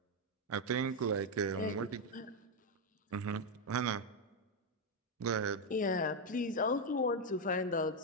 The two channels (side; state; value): both; normal; correlation 0.03